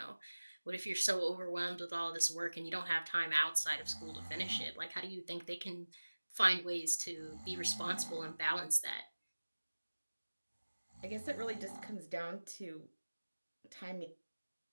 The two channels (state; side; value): inverted; both; correlation -1.00